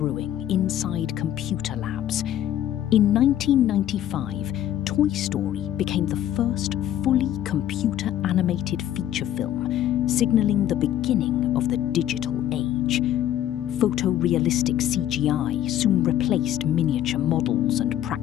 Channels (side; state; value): right; quieter; 11.7 dB